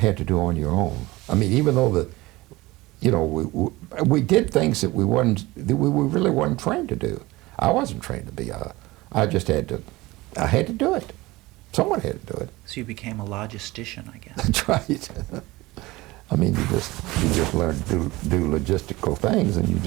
to do on your own. I mean, even though we did things that we really weren't trained to do. I wasn't trained to be I just had to, I had to do it. Someone had to do it. So you became a logistician, I guess. That's right. I mean, you just learned to do logistical things, and you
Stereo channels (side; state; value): left; quieter; 20.3 dB